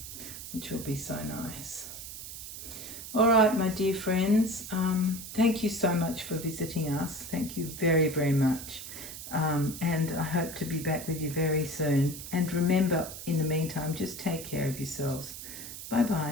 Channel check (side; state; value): right; noise; hiss, 10 dB below the sound